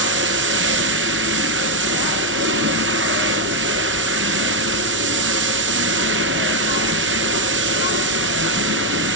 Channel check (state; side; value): normal; both; correlation 0.03